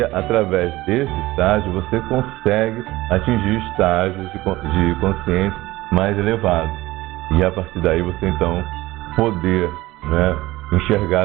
através desse estágio você consegue atingir estágios de consciência mais elevados. E a partir daí você então poder, né, enxergar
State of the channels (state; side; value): quieter; left; 18.3 dB